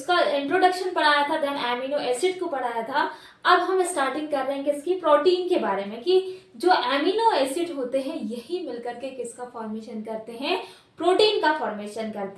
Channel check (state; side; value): identical; both; correlation 1.00